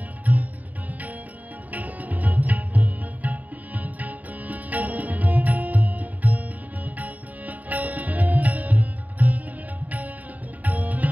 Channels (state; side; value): late; left; 0.076 ms